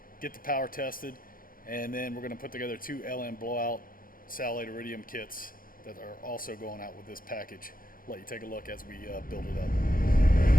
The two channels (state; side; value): late; right; 0.41 ms